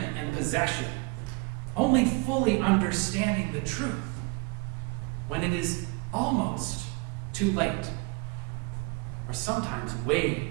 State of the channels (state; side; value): quieter; left; 28.6 dB